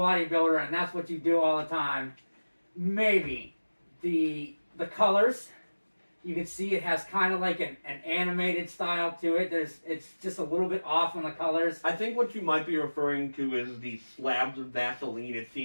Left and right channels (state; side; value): inverted; both; correlation -1.00